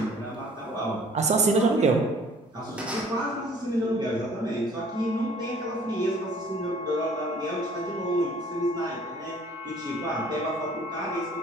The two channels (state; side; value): normal; both; correlation 0.54